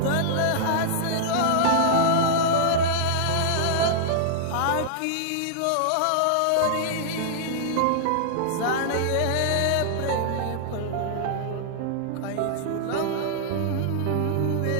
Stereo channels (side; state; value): both; different; correlation -0.01